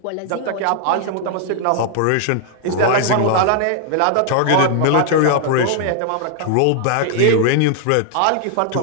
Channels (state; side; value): different; both; correlation -0.01